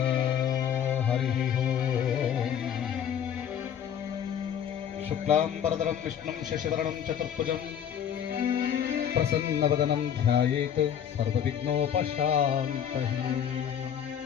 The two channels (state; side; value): quieter; right; 9.0 dB